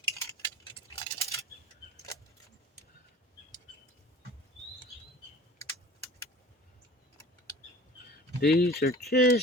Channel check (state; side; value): normal; both; correlation 0.43